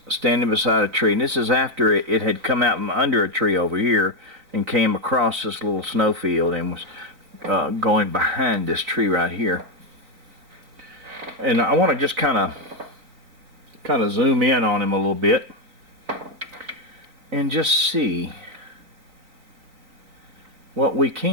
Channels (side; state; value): left; late; 4.2 ms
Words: standing beside a tree. And this is after it had come out from under a tree over here and came across this little snowfield and was going behind this tree right here. And I want to just kind of zoom in on him a little bit and just see what we